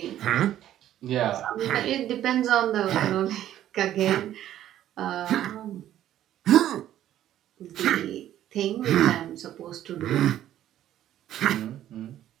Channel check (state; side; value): quieter; left; 12.1 dB